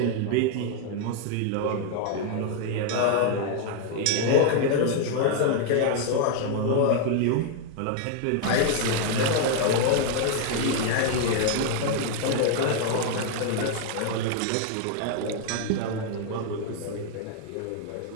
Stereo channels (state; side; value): different; both; correlation 0.00